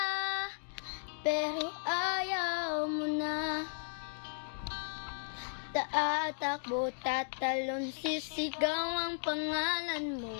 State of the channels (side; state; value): right; silent; digital silence